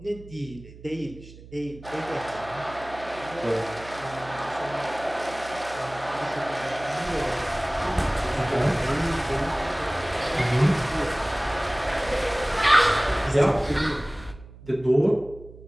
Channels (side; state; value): right; noise; hum, 18 dB below the sound